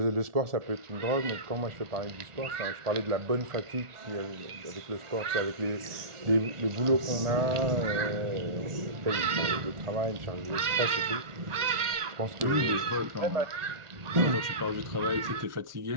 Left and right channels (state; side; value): late; left; 1.4 ms